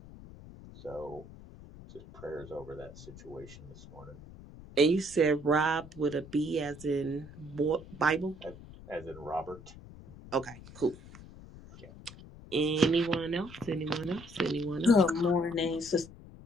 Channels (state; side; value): noise; left; rumble, 17 dB below the sound